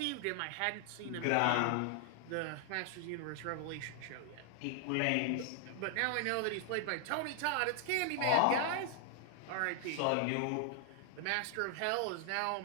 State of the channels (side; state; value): both; different; correlation 0.00